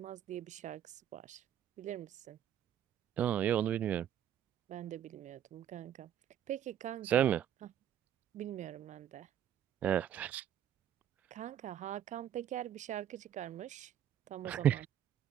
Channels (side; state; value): left; quieter; 10.4 dB